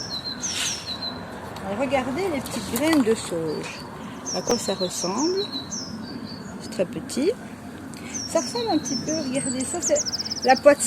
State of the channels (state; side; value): identical; both; correlation 1.00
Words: Regardez les petites graines de sauge. À quoi ça ressemble? C'est très petit. Ça ressemble un petit peu, regardez ça, c'est la pois de